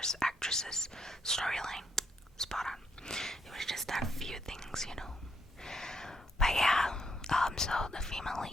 actresses, storyline, spot on. It was just that few things, you know. But yeah, so the female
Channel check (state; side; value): normal; both; correlation 0.75